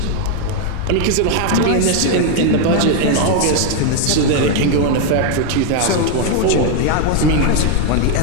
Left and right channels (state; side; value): different; both; correlation 0.01